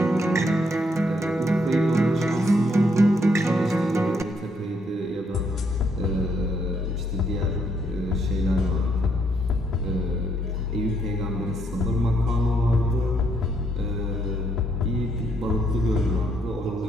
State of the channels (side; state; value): both; normal; correlation 0.73